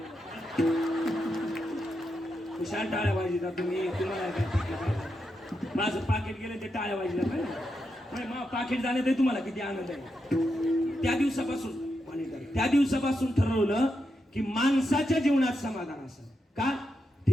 हुशार टाळ्या वाजता तुम्ही, तुम्हाला काय माझं पाकिट गेलं ते टाळ्या वाजल्या काय? मग पाकिट जाण्यात तुम्हाला किती आनंद आहे. त्या दिवसापासून ठरवलं की माणसाच्या जीवनात समाधान असं का,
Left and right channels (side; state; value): both; normal; correlation 0.85